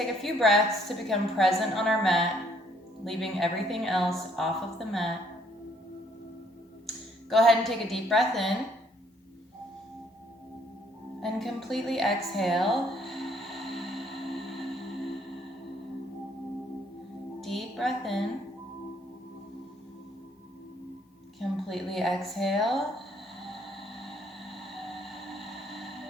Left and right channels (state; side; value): normal; both; correlation 0.66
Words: a few breaths to become present on our mat, leaving everything else off of the mat. Go ahead and take a deep breath in. And completely exhale. Deep breath in. Completely exhale.